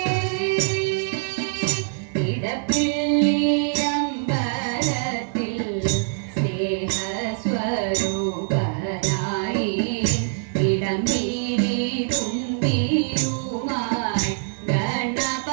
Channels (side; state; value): left; silent; digital silence